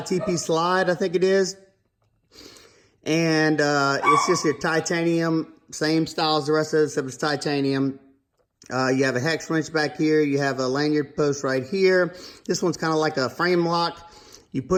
TP slide, I think it is. And it's just your titanium, same style as the rest of it, except it's titanium. You have a hex wrench back here. You have a lanyard post right here. This one's kind of like a frame lock. You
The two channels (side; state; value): both; identical; correlation 1.00